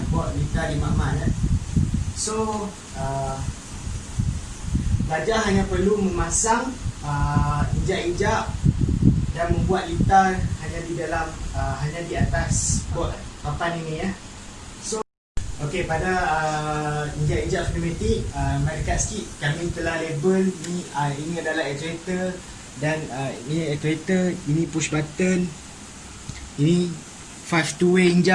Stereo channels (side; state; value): both; identical; correlation 1.00